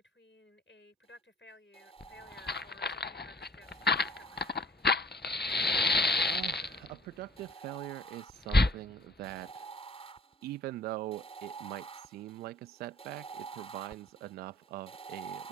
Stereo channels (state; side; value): normal; both; correlation 0.54